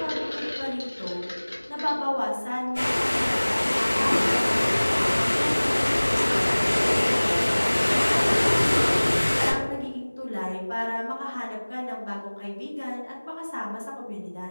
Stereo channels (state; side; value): inverted; both; correlation -1.00